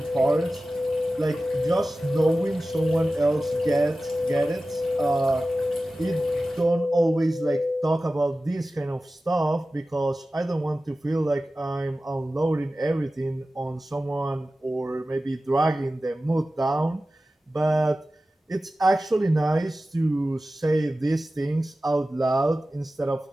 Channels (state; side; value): normal; both; correlation 0.95